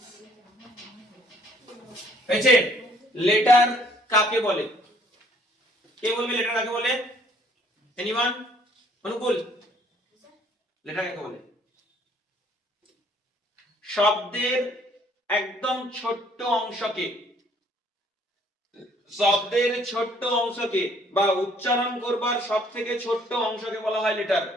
হয়েছে? লেটার কাকে বলে? কে বলবে লেটার কাকে বলে? এনিওয়ান? অনুকূল, লেটার কাকে বলে? শব্দের একদম ছোট্ট অংশকে, শব্দের ছোট্ট অংশকে বা উচ্চারণ করবার সব থেকে ছোট্ট অংশকে বলা হয় লেটার।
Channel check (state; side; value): normal; both; correlation 0.61